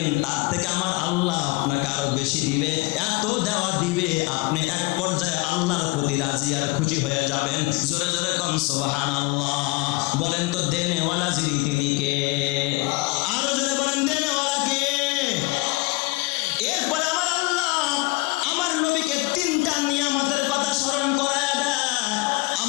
তার থেকে আমার আল্লাহ আপনাকে আরো বেশি দিবে, এত দেওয়া দিবে আপনি এক পর্যায়ে আল্লাহর প্রতি রাজি আর খুশি হয়ে যাবেন। জোরে জোরে কোন সুবহানাল্লাহ। বলেন তো দেনেওয়ালা যিনি তিনি কে? আরো জোরে বলেন দেনেওয়ালা কে? এরপরে আমার আল্লাহ আমার নবীকে 3টা নিয়ামতের কথা স্মরণ করায় দেয়।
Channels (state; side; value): quieter; right; 24.2 dB